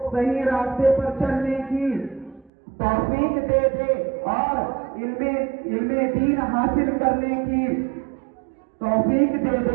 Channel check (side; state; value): left; drops out; at 2.5 s